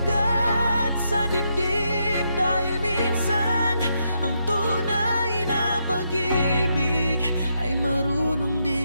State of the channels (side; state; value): both; inverted; correlation -0.80